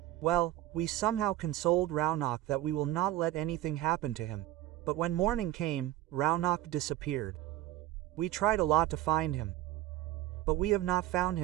Well, we somehow consoled Raunak that we will not let anything happen to him. But when morning came, Raunak disappeared. We tried a lot to find him. But we have not found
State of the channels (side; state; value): left; quieter; 14.5 dB